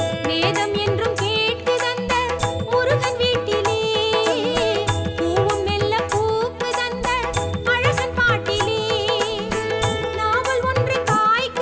வேதம் என்றும் கேட்குதந்த முருகன் வீட்டிலே பூவும் மெல்ல பூக்குதந்த அழகன் பாட்டிலே நாவல் ஒன்று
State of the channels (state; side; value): identical; both; correlation 1.00